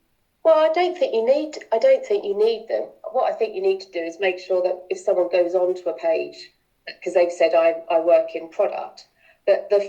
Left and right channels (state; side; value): identical; both; correlation 1.00